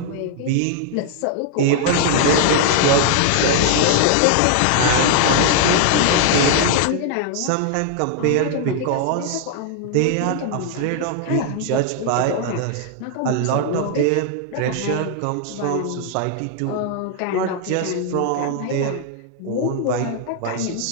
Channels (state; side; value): different; both; correlation 0.00